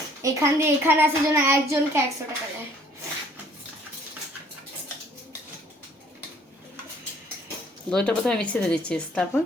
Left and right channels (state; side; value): normal; both; correlation 0.59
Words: এখান দিয়ে এখানে আসার জন্য একজনকে 100 টাকা দেয়। দইটা প্রথমে মিক্সিতে দিচ্ছিস,